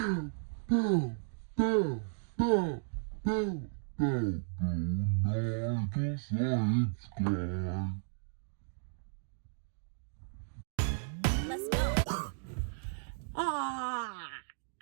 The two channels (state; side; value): silent; left; digital silence